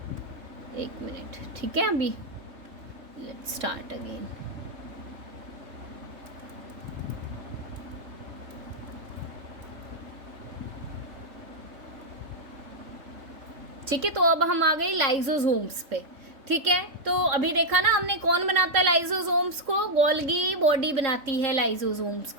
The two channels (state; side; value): late; left; 3.7 ms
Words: एक मिनट, ठीक है। अभी लेट्स स्टार्ट अगेन। ठीक है, तो अब हम आ गए लाइजोसोम्स पे। ठीक है, तो अभी देखा ना हमने कौन बनाता है लाइजोसोम्स को, गोल्गी बॉडी बनाती है लाइजोसोम्स